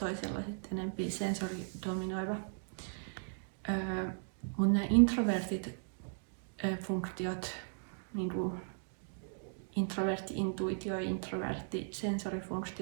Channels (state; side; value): silent; left; digital silence